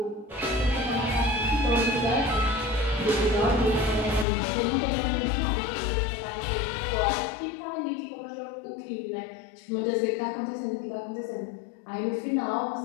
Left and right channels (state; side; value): drops out; right; at 4.2 s